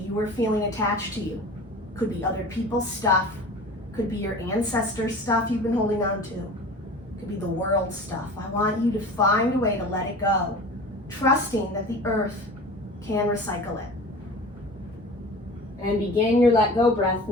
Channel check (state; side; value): normal; both; correlation 0.38